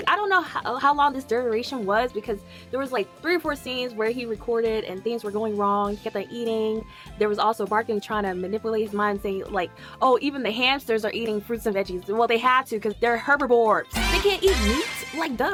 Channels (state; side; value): identical; both; correlation 1.00